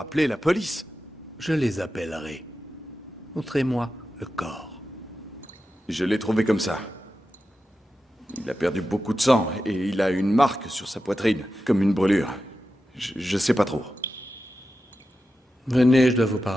la police. Je les appellerai. Montrez-moi le corps. Je l'ai trouvé comme ça. Il a perdu beaucoup de sang et il a une marque sur sa poitrine, comme une brûlure. Je sais pas trop. Venez, je dois vous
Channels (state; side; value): normal; both; correlation 0.91